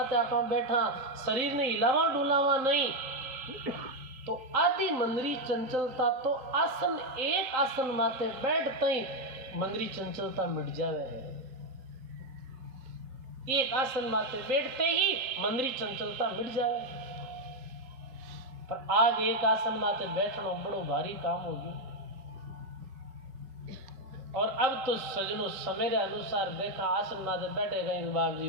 आप बैठा, शरीर ने हिलावा डुलावा नहीं, तो आदि मंदरी चंचलता तो आसन, एक आसन माते बैठते ही मंदरी चंचलता मिट जावे है। एक आसन माते बैठते ही मंदरी चंचलता मिट जावे। पर आज एक आसन माते बैठना बड़ो भारी काम होगी। और अब तो सजनों समय के अनुसार देखा आसन माते बैठे गए बाप जी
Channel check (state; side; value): late; left; 3.8 ms